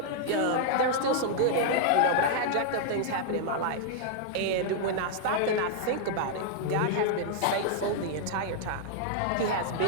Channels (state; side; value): different; both; correlation -0.01